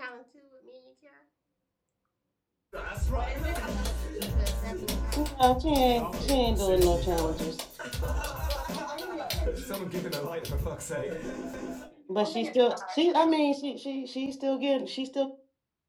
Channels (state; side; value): identical; both; correlation 1.00